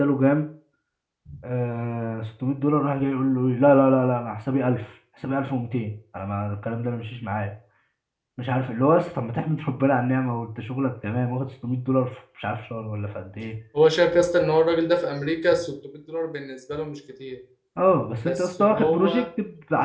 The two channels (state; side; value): identical; both; correlation 1.00